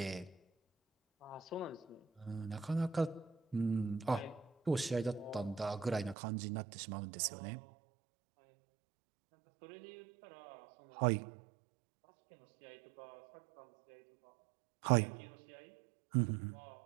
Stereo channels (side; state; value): left; drops out; at 6.2 s